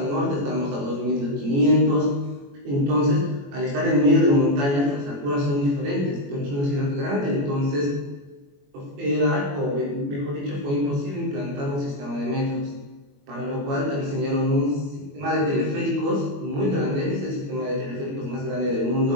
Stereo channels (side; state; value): left; late; 21 ms